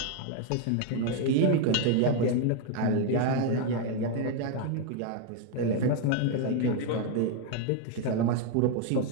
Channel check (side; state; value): both; different; correlation 0.01